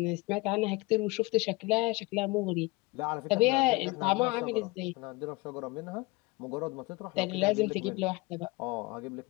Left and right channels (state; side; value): quieter; right; 24.1 dB